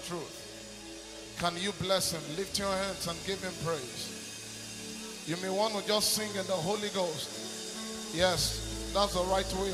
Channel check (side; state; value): both; identical; correlation 1.00